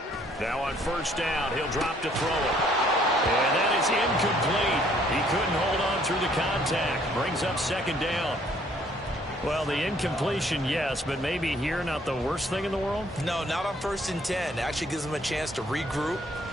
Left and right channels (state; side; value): normal; both; correlation 0.63